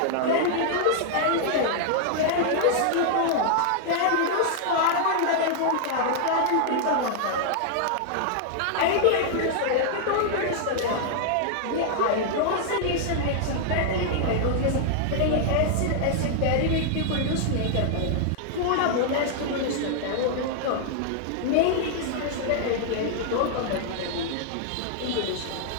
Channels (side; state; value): both; different; correlation -0.01